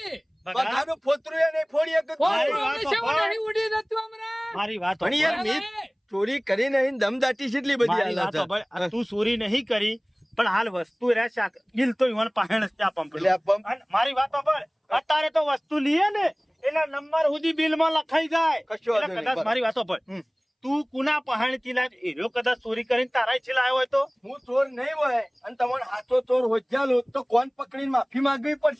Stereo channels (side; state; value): both; identical; correlation 1.00